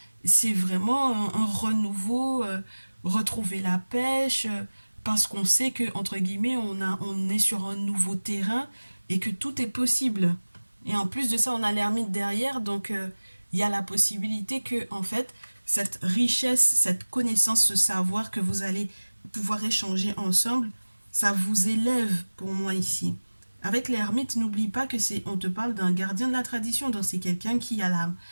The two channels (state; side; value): inverted; both; correlation -1.00